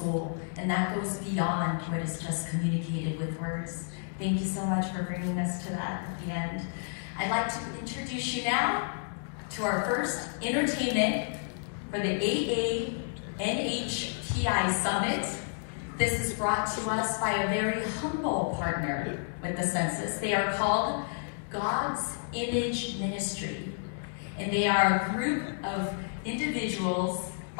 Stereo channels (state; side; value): silent; right; digital silence